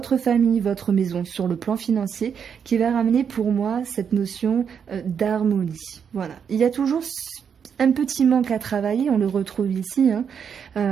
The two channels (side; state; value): left; quieter; 7.3 dB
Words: famille, votre maison sur le plan financier qui va ramener pour moi cette notion d'harmonie. Voilà, il y a toujours un petit manque à travailler, on le retrouve ici.